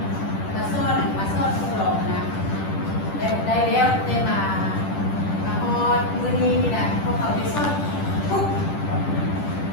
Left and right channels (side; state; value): right; late; 10 ms